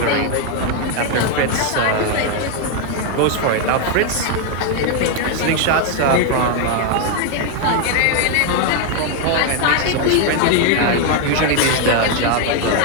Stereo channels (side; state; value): both; different; correlation 0.01